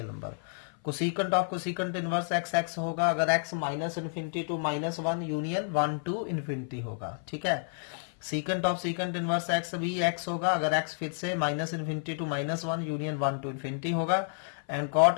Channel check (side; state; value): right; silent; 55 dB below the other